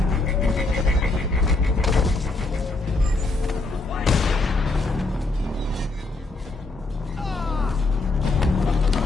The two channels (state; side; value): quieter; right; 3.3 dB